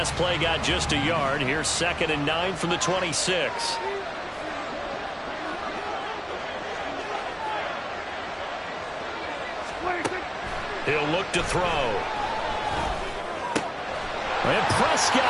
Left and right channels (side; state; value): both; identical; correlation 1.00